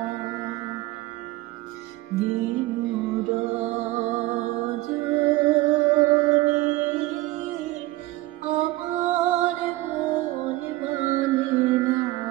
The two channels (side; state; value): left; quieter; 18.6 dB